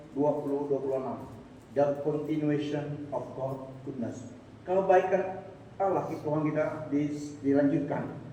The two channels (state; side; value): identical; both; correlation 1.00